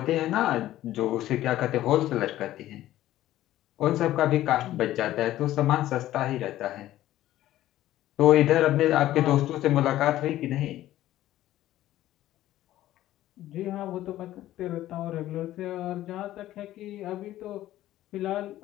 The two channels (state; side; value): quieter; right; 14.2 dB